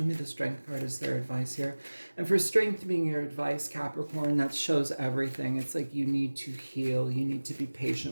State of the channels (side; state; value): both; inverted; correlation -1.00